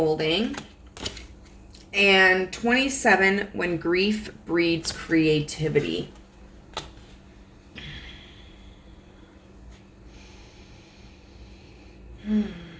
And 27, When Grief Breeds Creativity.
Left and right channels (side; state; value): both; identical; correlation 1.00